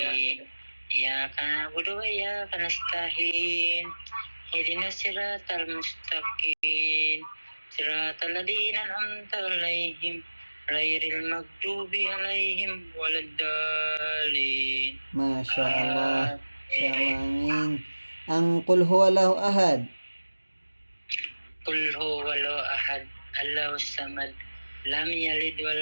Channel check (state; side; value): inverted; both; correlation -1.00